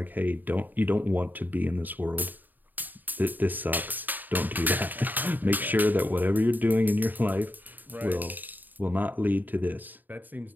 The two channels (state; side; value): late; left; 0.088 ms